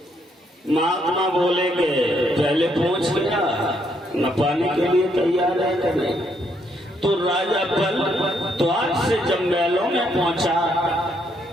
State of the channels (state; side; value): normal; both; correlation 0.73